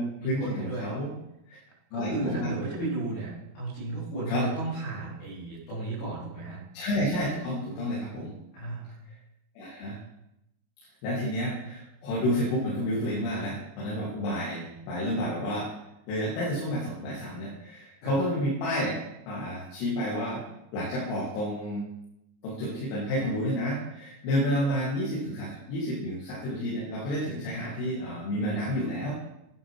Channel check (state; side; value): late; right; 29 ms